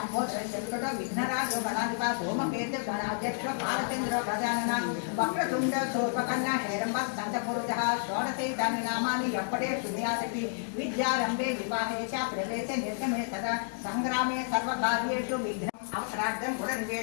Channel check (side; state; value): right; silent; digital silence